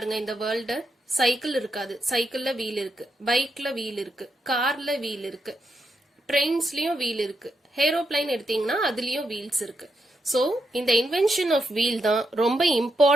இந்த வேர்ல்ட. சைக்கிள் இருக்காது, சைக்கிள்ல வீல் இருக்கு, பைக்ல வீல் இருக்கு, கார்ல வீல் இருக்கு, ட்ரெயின்ஸ்லயும் வீல் இருக்கு, ஏரோப்ளைன் எடுத்தீங்கன்னா அதுலயும் வீல்ஸ் இருக்கு. சோ இந்த இன்வென்ஷன் ஆஃப் வீல் தான் ரொம்ப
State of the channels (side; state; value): both; normal; correlation 0.83